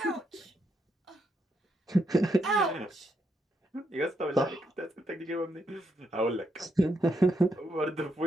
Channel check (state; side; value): normal; both; correlation 0.79